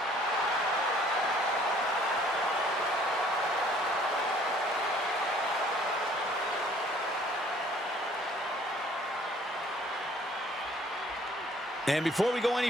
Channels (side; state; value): both; normal; correlation 0.57